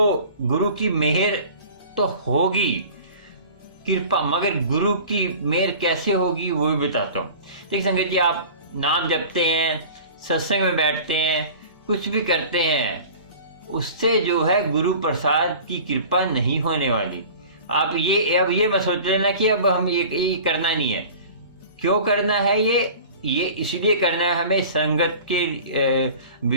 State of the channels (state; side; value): inverted; both; correlation -0.41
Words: गुरु की मेहर तो होगी, कृपा, मगर गुरु की मेहर कैसे होगी वो भी बताता हूँ। देखिए संगत जी, आप नाम जपते हैं, सत्संग में बैठते हैं, कुछ भी करते हैं, उससे जो है गुरु प्रसाद की कृपा नहीं होने वाली। आप ये मत सोच लेना कि अब हम ये करना नहीं है। क्यों करना है ये इसलिए करना है, हमें संगत के